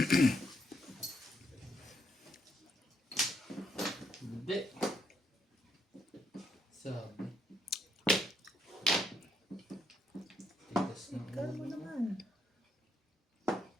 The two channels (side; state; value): both; normal; correlation 0.75